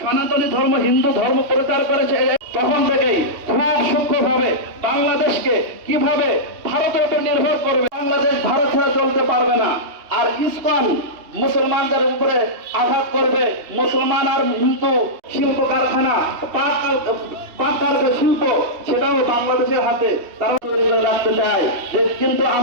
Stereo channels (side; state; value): left; late; 3.2 ms